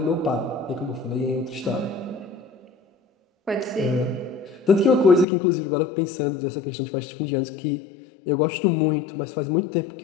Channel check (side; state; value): right; drops out; at 5.2 s